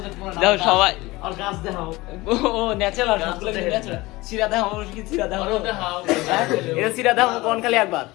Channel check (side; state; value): right; quieter; 20.8 dB